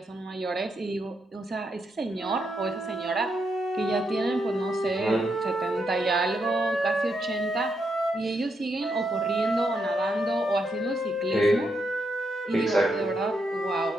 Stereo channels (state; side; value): normal; both; correlation 0.81